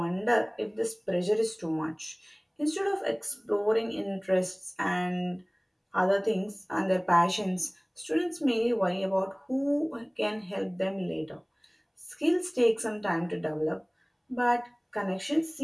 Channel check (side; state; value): both; identical; correlation 1.00